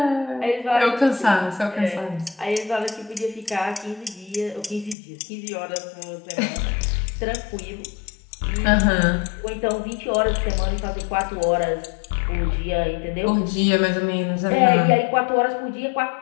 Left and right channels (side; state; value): right; drops out; at 5.0 s